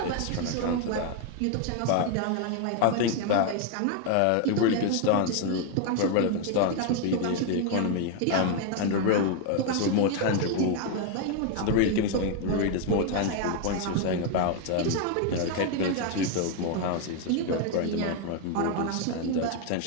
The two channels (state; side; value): different; both; correlation 0.01